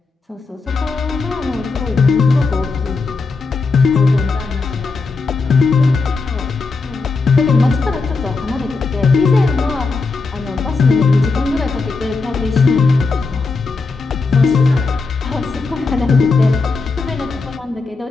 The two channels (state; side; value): quieter; right; 4.1 dB